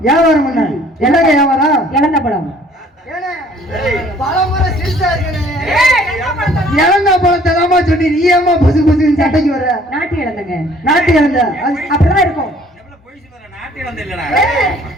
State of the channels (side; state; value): both; normal; correlation 0.57